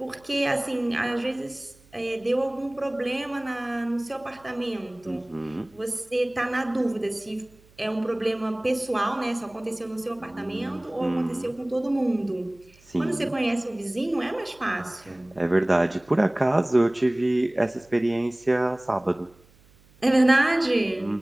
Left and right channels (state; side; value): noise; right; hum, 29 dB below the sound